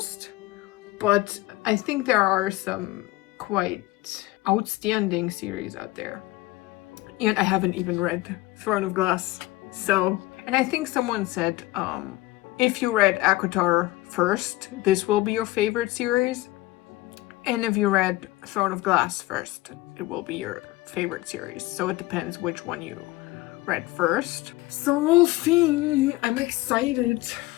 But I think there are some quite outstanding series out there. And I haven't even read Throne of Glass. So, and I think someone said, if you read ACOTAR first, this will be your favorite series. And if you read Throne of Glass first, it will be your favorite series. So it depends which one you read first. So we'll see. I'm excited.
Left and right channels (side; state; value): right; quieter; 19.0 dB